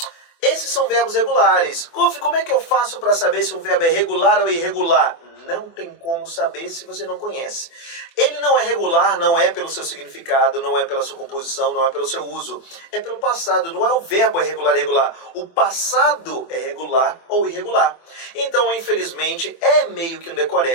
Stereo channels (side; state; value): right; late; 24 ms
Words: Esses são verbos regulares. Golf, como é que eu faço para saber se um verbo é regular ou irregular? Não tem como saber se você não conhece. Ele não é regular, não é pelo seu significado, não é pela sua composição, não é pelo seu uso. É pelo passado, não é o verbo é regular ou irregular. O passado é regular ou irregular. Então, infelizmente, é meio que um